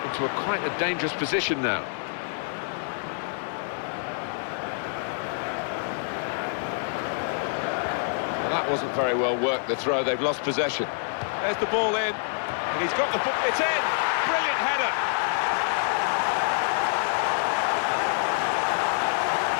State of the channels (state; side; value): silent; right; 60 dB below the other